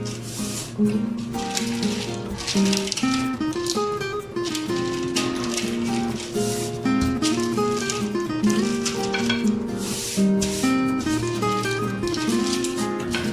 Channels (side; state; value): both; identical; correlation 1.00